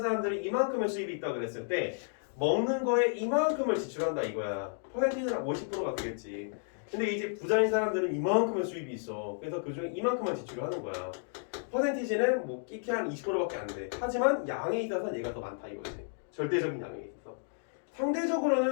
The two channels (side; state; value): right; silent; digital silence